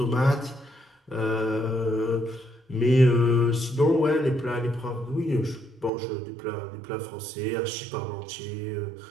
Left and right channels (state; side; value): drops out; left; at 5.9 s